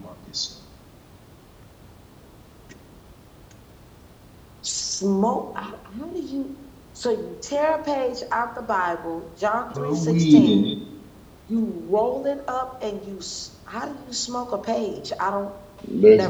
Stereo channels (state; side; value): identical; both; correlation 1.00